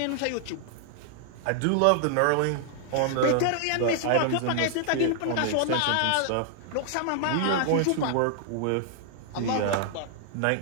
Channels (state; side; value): different; both; correlation 0.00